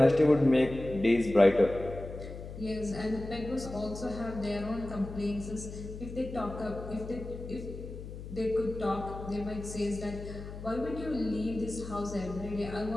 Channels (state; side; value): noise; left; hum, 11 dB below the sound